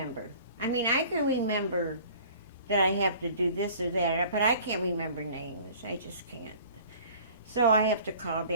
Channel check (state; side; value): inverted; both; correlation -0.48